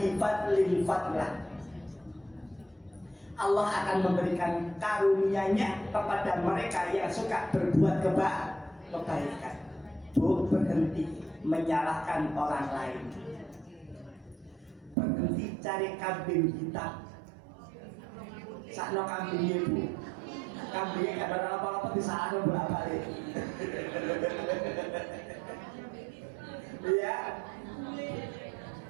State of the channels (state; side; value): drops out; left; at 15.0 s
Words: fadlin fadlah. Allah akan memberikan karunia-Nya kepada mereka yang suka berbuat kebaikan. Bu, berhenti menyalahkan orang lain. Berhenti cari kambing hitam. Sakno kambingnya Bu. Kambingnya gak ada apa-apa disalahkan bolak-balik. Iya.